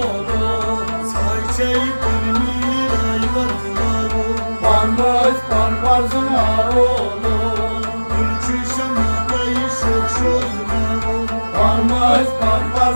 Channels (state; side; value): inverted; both; correlation -1.00